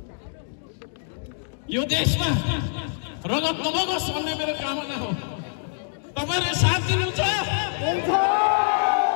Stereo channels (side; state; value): right; silent; digital silence